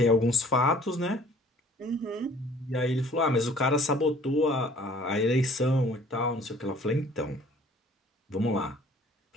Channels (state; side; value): normal; both; correlation 0.54